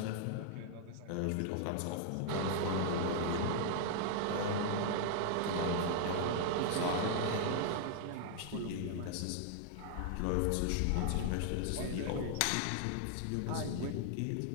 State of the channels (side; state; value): both; different; correlation 0.00